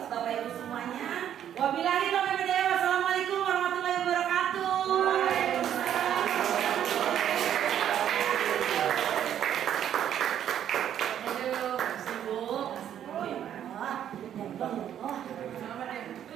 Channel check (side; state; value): left; quieter; 10.1 dB